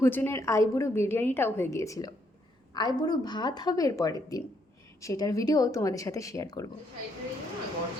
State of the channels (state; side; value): normal; both; correlation 0.73